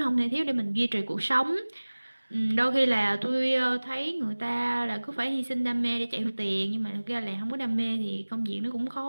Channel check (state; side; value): inverted; both; correlation -1.00